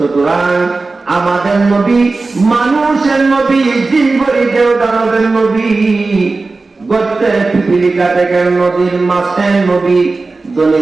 আমাদের নবী মানুষের নবী, জিনগরিদেও দানবের নবী, গর্তের পিপিলিকা থেকে নদীর মাছের নবী, ধনী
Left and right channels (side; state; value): left; quieter; 3.7 dB